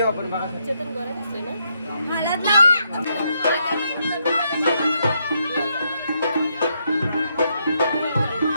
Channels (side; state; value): both; inverted; correlation -0.77